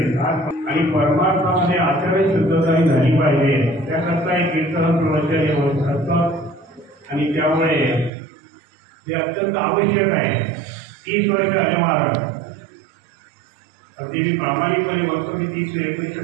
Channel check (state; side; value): drops out; left; at 8.1 s